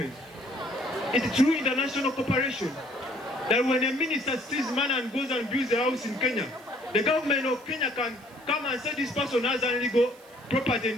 it's through international cooperation that when a minister steals money and goes and builds a house in Kenya, the government of Kenya can come and say this person has illegal property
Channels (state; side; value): noise; right; hiss, 26 dB below the sound